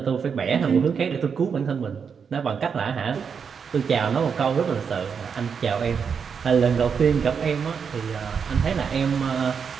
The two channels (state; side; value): quieter; left; 6.4 dB